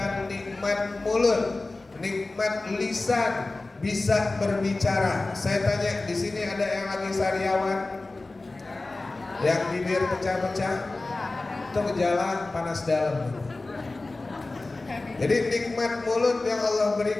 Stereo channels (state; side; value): quieter; right; 3.2 dB